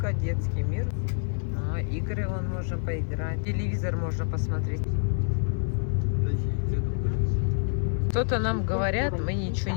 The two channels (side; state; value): right; silent; digital silence